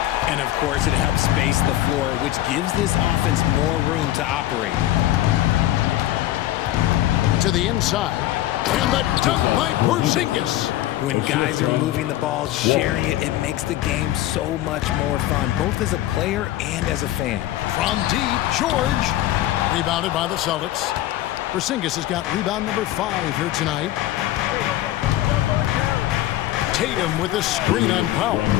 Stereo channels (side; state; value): right; quieter; 14.6 dB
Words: And, of course, it helps space the floor, which gives this offense more room to operate. To the inside. And the dunk by Porzingis. When guys are moving the ball, sharing it, it makes the game so much more fun, both as a player and as a fan. From deep, George. Rebounded by the Celtics. Porzingis has got rebound number 5 here tonight. Tatum with a screen on Powell.